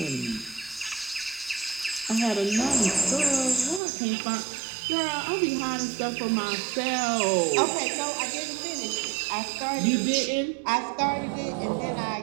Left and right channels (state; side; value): drops out; left; at 3.8 s